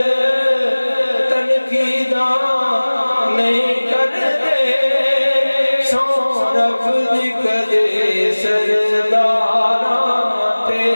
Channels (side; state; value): both; inverted; correlation -1.00